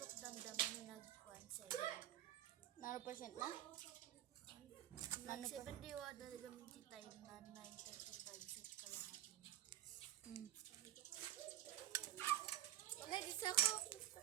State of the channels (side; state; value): left; quieter; 13.5 dB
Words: damdaman na nag-1 7. Nano percent na? Nano pa? Nag-7 diwa talaga minti tayo na 9:35 set kalahati na. Wala, di sa ako.